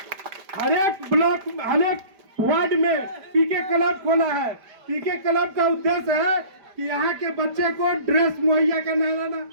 हर एक ब्लॉक, हर एक वार्ड में पीके क्लब खोला है। पीके क्लब का उद्देश्य है कि यहाँ के बच्चे को ड्रेस मुहैया कराना,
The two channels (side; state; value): left; late; 5.0 ms